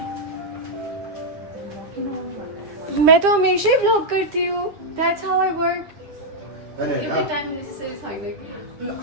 मैं तो हमेशा ही vlog करती हूँ. That's how I work. होइन एभ्री होइन टाइम नेसेसरी छैन कि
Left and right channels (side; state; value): left; late; 9.8 ms